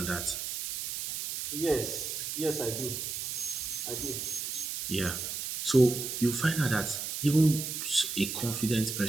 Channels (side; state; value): right; noise; hiss, 4 dB below the sound